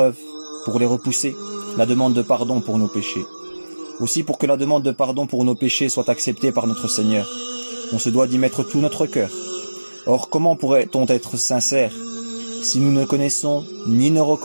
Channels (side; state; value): both; inverted; correlation -1.00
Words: pour les repousser, la demande de pardon pour nos péchés. Aussi pour que la demande de pardon pour nos péchés soit acceptée par notre Seigneur, on se doit d'y mettre tout notre cœur. Or, comment pourrait-on être sincère si nous ne connaissons ni ne